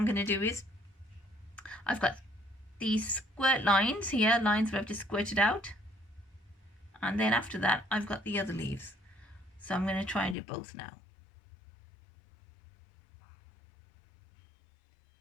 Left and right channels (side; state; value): right; drops out; at 10.4 s